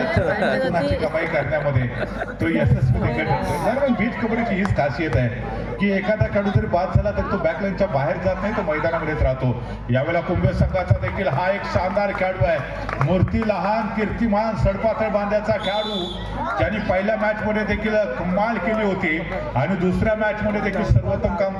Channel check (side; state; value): both; identical; correlation 1.00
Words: गुणाची कमाई करण्यामध्ये तो यशस्वी देखील ठरतोय. दरम्यान बीच कबड्डीची हीच खासियत आहे की एखादा खेळाडू जरी बाद झाला तर तो बॅकलाईनच्या बाहेर जात नाही, तो मैदानामध्येच राहतो. यावेळेला कुंभे संघाचा देखील हा एक शानदार खेळाडू आहे. मूर्ती लहान कीर्तिमान सडपातळ बांध्याचा खेळाडू ज्यांनी पहिल्या मॅच मध्ये देखील कमाल केली होती आणि दुसऱ्या मॅच मध्ये देखील सर्वोत्तम